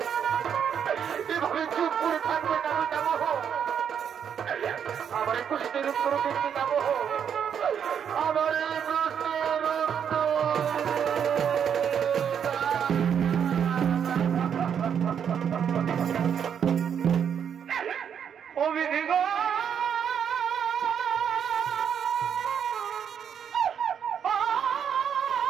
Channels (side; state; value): left; quieter; 8.0 dB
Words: এভাবে চুপ করে থাকবে না পিতামহ। আমার প্রশ্নের উত্তর দিন পিতামহ। আমার এই প্রশ্নের অভিধিগ